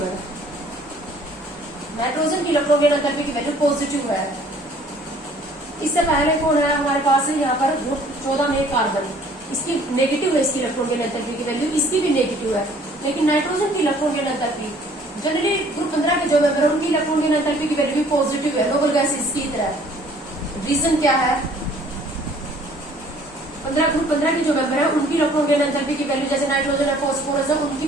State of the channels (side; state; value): both; normal; correlation 0.56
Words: है। नाइट्रोजन की इलेक्ट्रॉन गेन एंथैल्पी की वैल्यू पॉजिटिव है। इससे पहले कौन है हमारे पास है यहाँ पर ग्रुप 14 में कार्बन, इसकी नेगेटिव है, इसकी इलेक्ट्रॉन गेन एंथैल्पी की वैल्यू, इसकी भी नेगेटिव है। लेकिन नाइट्रोजन की इलेक्ट्रॉन गेन एंथैल्पी जनरली ग्रुप 15 के जो मेंबर है उनकी इलेक्ट्रॉन गेन एंथैल्पी की वैल्यू भी पॉजिटिव है, नोबल गैस इसकी तरह। रीजन क्या है, 15 ग्रुप 15 की जो मेंबर है उनकी इलेक्ट्रॉन गेन एंथैल्पी की वैल्यू जैसे नाइट्रोजन है, फास्फोरस है, उनकी